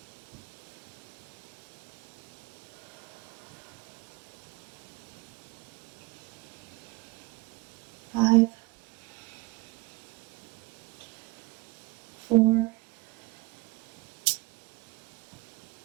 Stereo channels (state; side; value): quieter; left; 24.7 dB